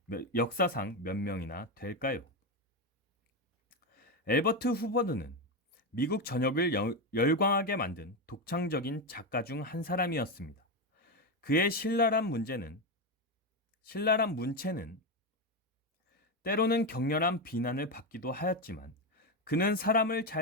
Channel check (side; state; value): both; normal; correlation 0.11